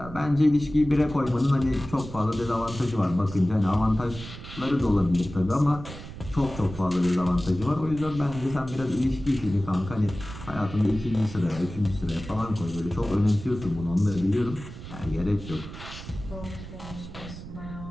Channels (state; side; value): noise; right; rumble, 12 dB below the sound